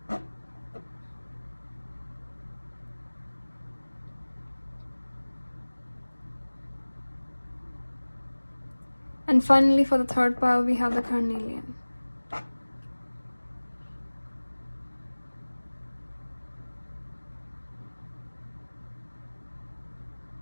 And finally, for the third pile, we have the carnelian.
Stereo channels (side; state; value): both; inverted; correlation -1.00